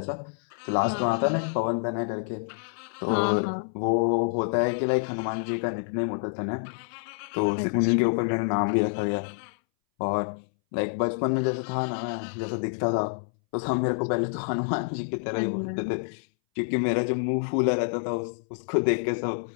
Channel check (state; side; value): silent; right; 60 dB below the other